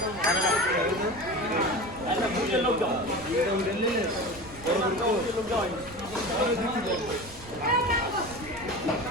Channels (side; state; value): right; noise; rumble, 18 dB below the sound